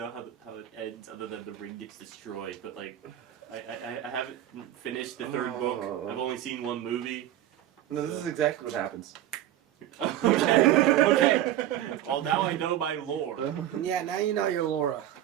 how it ends other than the ring gets destroyed, but like, I haven't finished the third book. I've only seen one movie. No, this is exactly what happens. Okay. Well, now I know my lore. Yeah, now you know your Laura.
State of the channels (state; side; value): quieter; left; 12.5 dB